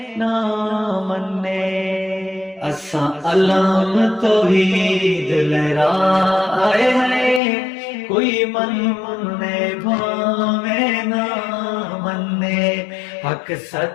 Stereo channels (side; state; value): right; drops out; at 7.4 s